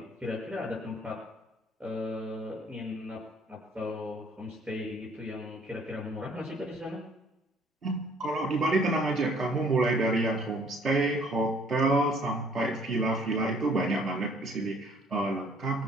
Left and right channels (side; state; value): both; normal; correlation 0.59